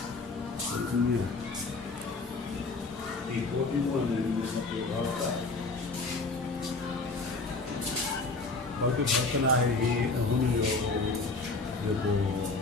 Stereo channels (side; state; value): right; quieter; 3.6 dB